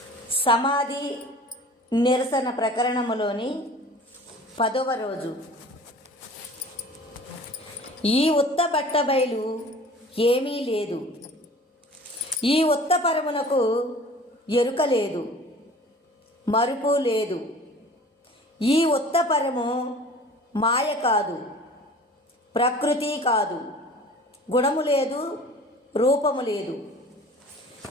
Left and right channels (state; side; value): normal; both; correlation 0.44